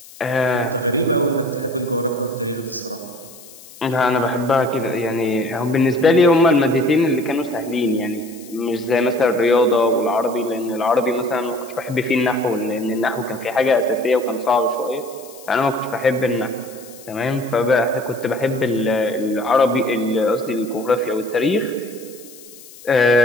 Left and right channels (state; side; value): noise; left; hiss, 20 dB below the sound